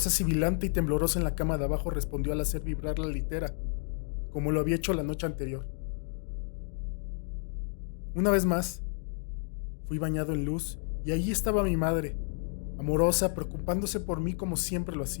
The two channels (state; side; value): silent; right; 57 dB below the other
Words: sibilante y temblorosa en la cama de abajo respondió al hacer vibrar la litera, como lo había hecho la noche anterior. Una vez más, fui bañado en luz y allí estaba mi madre, amorosa, preocupándose por mí como siempre lo